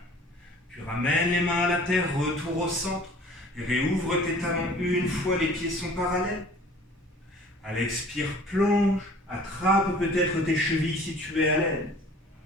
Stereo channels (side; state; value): both; normal; correlation 0.49